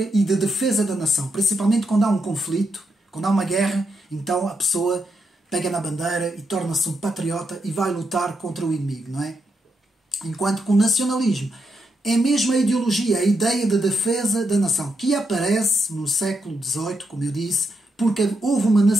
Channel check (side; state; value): both; normal; correlation 0.82